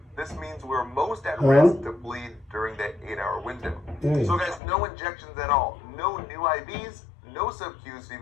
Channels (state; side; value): drops out; right; at 4.6 s